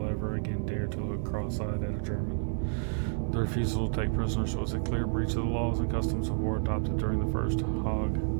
ever again dare to look cross-eyed at a German. The refusal to take prisoners was a clear breach of the laws and customs of war adopted during the First Hague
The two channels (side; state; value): left; silent; 58 dB below the other